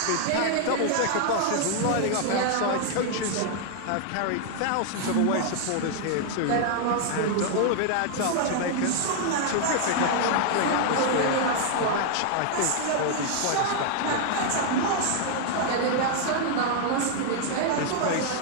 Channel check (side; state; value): both; different; correlation 0.00